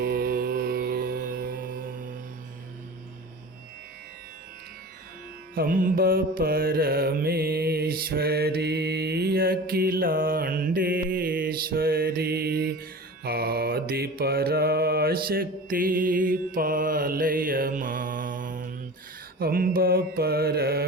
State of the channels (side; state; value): both; normal; correlation 0.35